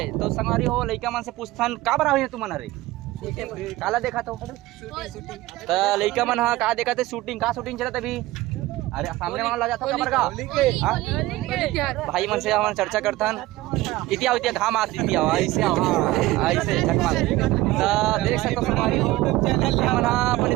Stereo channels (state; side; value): quieter; left; 17.8 dB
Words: तो संगवारी हो लइका मन से पूछथन का बरा हुई तुम मन रे काला देखा तो लइका मन हाँ का देखा थे शूटिंग का शूटिंग चला अभी। अरे सामने वाला जाता कमर का भाई मन से हम चर्चा करथन इतिया इतिया घाम आती इतिया ऐसे ऐसे चकमा तो देख सकते हमारी हो मन अपन